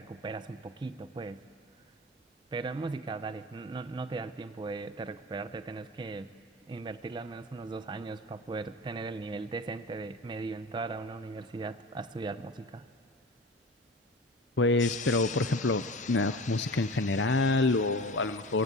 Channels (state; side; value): normal; both; correlation 0.35